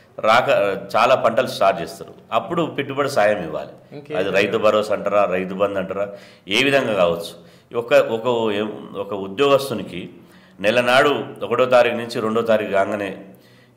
చాలా పంటలు స్టార్ట్ చేస్తారు. అప్పుడు పెట్టుబడి సాయం ఇవ్వాలి. అది రైతు భరోసా అంటారా, రైతు బంధు అంటారా, ఏ విధంగా కావచ్చు. ఒక ఉద్యోగస్తునికి నెల నాడు 1వ తారీఖు నుంచి 2వ తారీఖు కాగానే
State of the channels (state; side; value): identical; both; correlation 1.00